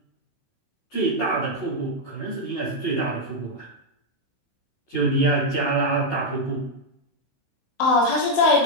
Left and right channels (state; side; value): late; right; 16 ms